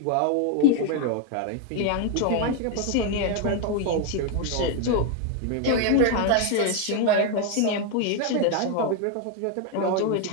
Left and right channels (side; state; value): both; different; correlation 0.01